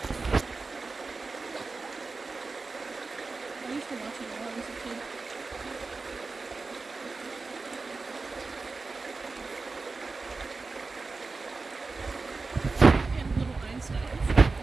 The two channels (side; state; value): left; quieter; 4.0 dB